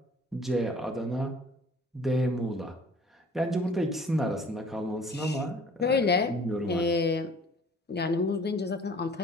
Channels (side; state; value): both; normal; correlation 0.51